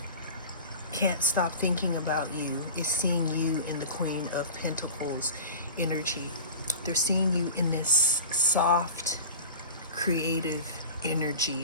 can't stop thinking about you is seeing you in the Queen of Pentacles energy. They're seeing you in this soft, creative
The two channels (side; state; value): both; inverted; correlation -0.34